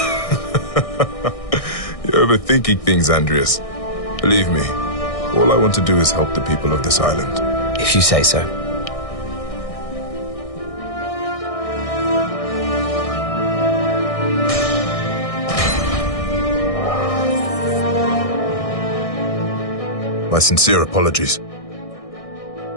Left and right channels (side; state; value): right; late; 1.6 ms